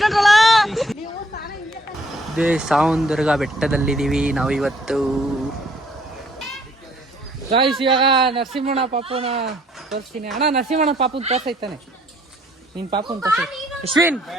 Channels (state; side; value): normal; both; correlation 0.63